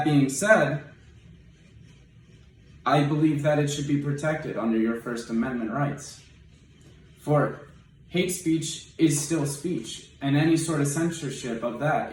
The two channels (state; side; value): identical; both; correlation 1.00